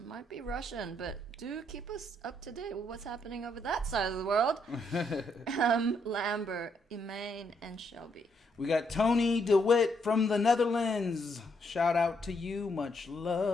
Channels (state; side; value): normal; both; correlation 0.75